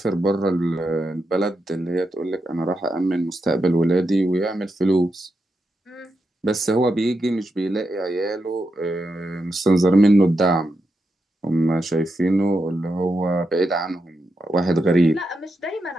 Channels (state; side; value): normal; both; correlation 0.86